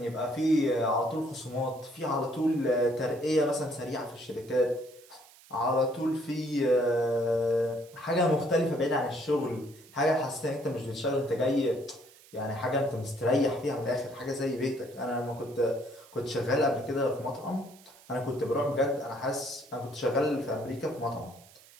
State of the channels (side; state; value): right; noise; hiss, 24 dB below the sound